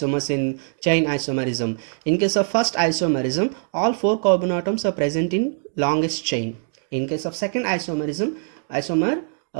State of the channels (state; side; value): silent; left; 64 dB below the other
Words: in chain isomerism. In case of first isomerism, all four carbon atoms are present in longest chain. In case of second isomer,